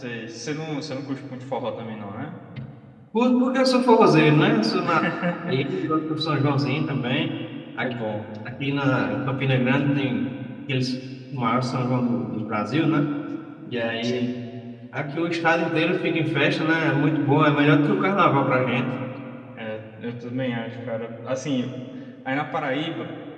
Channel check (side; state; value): both; identical; correlation 1.00